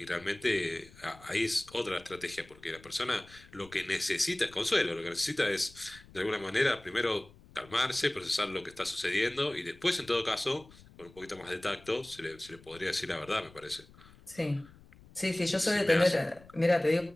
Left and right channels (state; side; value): noise; left; rumble, 23 dB below the sound